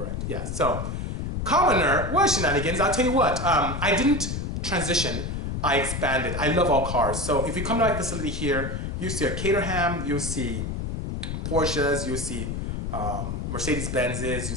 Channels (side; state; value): left; noise; rumble, 3 dB below the sound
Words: Yeah. So, commoner, well, Shenanigans. I'll tell you what. I didn't transition. I expanded. I love all cars. So if you come to my facility here, you see a Caterham, you see Porsches, you see Mercedes-Benzes, you